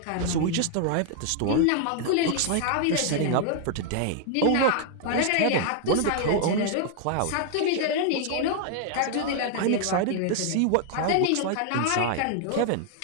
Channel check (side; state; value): both; different; correlation 0.00